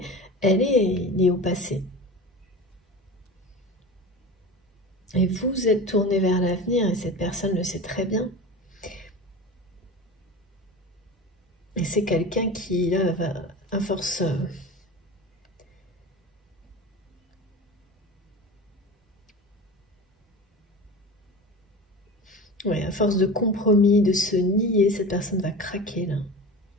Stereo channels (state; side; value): normal; both; correlation 0.31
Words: elle est liée au passé. Et vous êtes tourné vers l'avenir, et cette personne le sait très bien. Et c'est quelqu'un qui, là, va à force... ouais, à force de compromis, de se nier, cette personne va craquer, là.